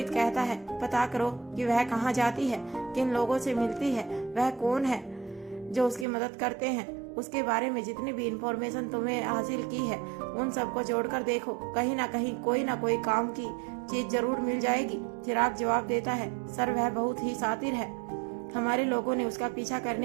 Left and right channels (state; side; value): drops out; left; at 6.1 s